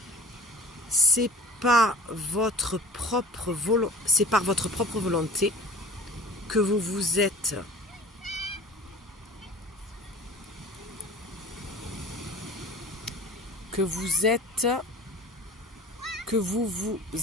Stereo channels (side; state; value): both; normal; correlation 0.42